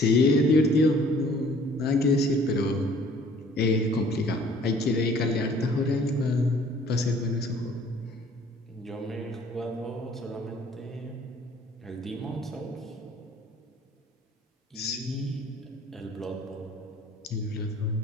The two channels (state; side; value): normal; both; correlation 0.55